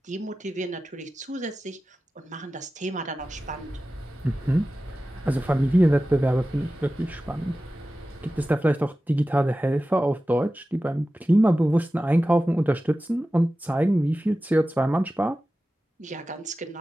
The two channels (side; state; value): both; normal; correlation 0.95